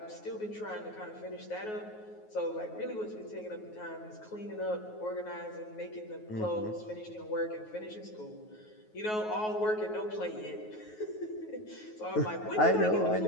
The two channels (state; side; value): late; right; 9.4 ms